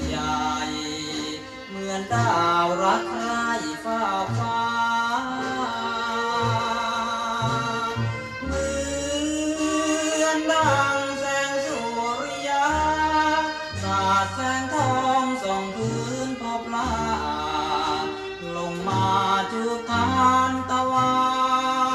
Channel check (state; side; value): identical; both; correlation 1.00